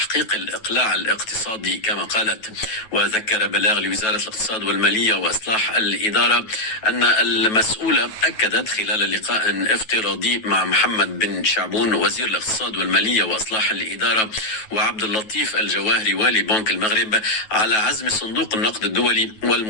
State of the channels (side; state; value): right; late; 9.3 ms